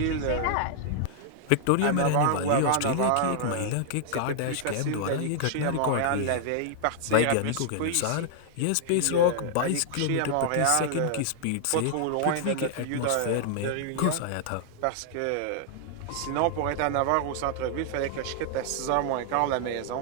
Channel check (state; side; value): different; both; correlation -0.01